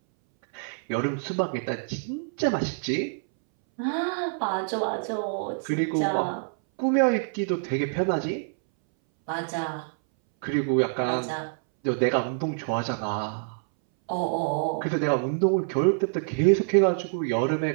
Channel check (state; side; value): silent; left; 61 dB below the other